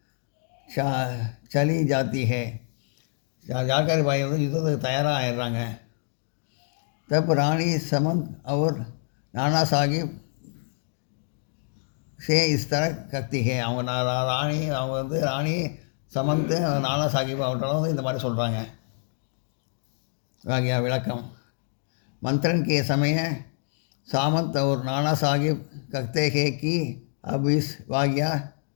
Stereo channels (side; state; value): right; silent; 61 dB below the other